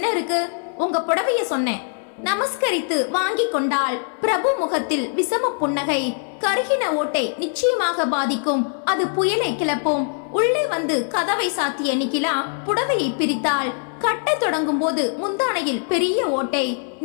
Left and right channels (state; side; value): silent; right; 56 dB below the other